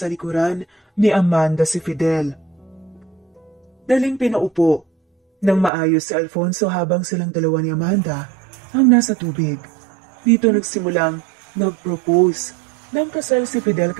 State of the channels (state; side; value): drops out; left; at 5.7 s